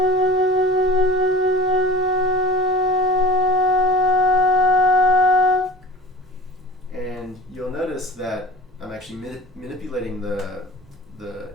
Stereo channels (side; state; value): both; normal; correlation 0.38